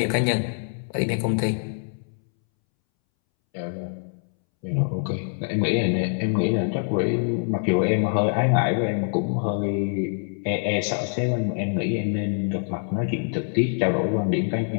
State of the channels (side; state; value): right; silent; 62 dB below the other